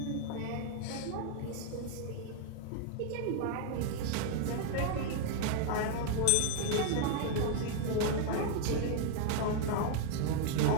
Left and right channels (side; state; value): both; different; correlation 0.00